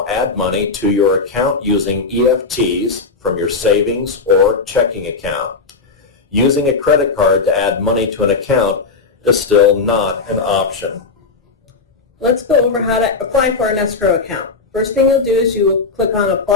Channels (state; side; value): quieter; right; 4.3 dB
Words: add money to your account using EFTs from your savings or checking account. Using a credit card to add money to an account is still not an option. Let's go over how to apply for an escrow account. First thing you'll do is you will click on